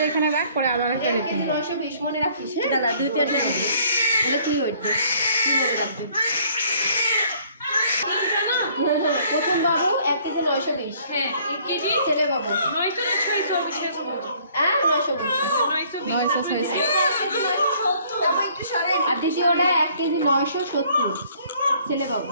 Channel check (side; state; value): both; inverted; correlation -0.60